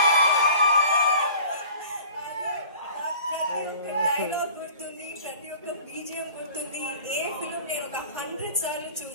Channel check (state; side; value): inverted; both; correlation -0.45